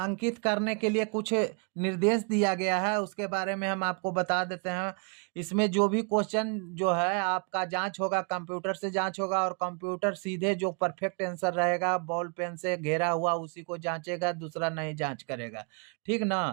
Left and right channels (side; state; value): left; quieter; 37.9 dB